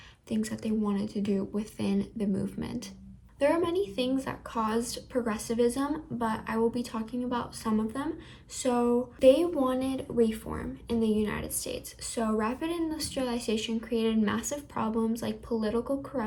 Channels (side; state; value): both; identical; correlation 1.00